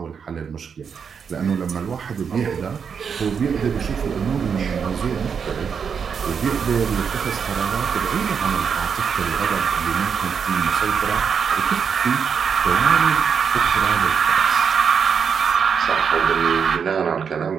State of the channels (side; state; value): left; quieter; 6.6 dB